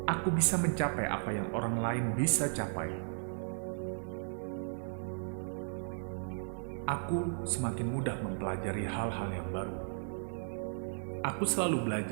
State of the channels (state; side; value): silent; left; 54 dB below the other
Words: Aku bisa mencapai apa yang orang lain bisa capai. Aku semakin mudah mempelajari hal-hal yang baru. Aku selalu